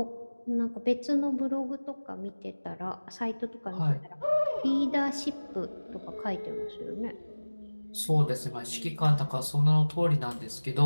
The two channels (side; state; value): both; inverted; correlation -1.00